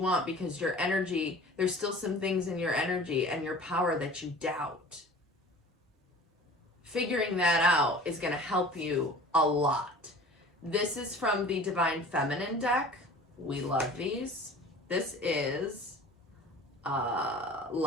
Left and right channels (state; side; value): normal; both; correlation 0.43